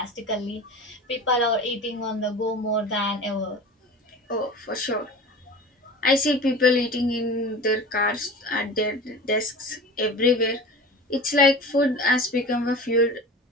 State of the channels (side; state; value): both; normal; correlation 0.35